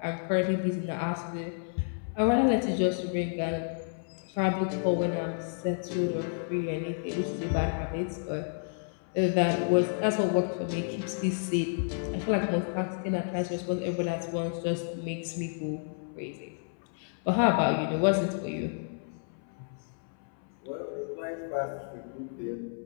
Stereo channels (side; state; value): right; silent; 57 dB below the other